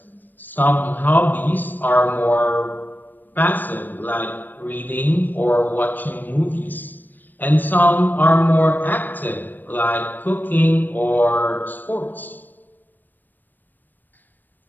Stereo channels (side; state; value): right; late; 0.090 ms